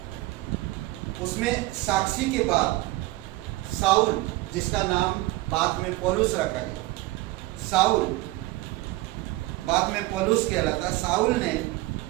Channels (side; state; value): left; quieter; 19.4 dB